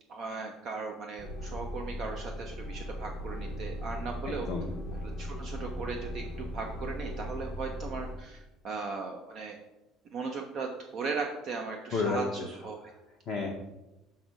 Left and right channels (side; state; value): both; normal; correlation 0.59